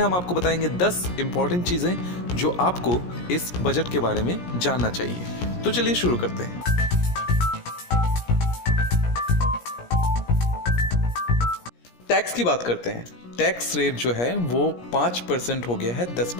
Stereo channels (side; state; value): right; late; 17 ms